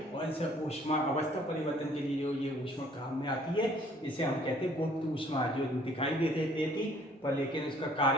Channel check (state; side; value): normal; both; correlation 0.59